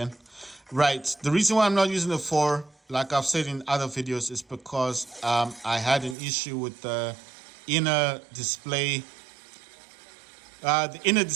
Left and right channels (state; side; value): drops out; left; at 6.2 s